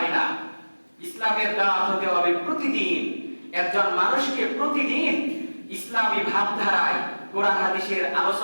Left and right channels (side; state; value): both; inverted; correlation -1.00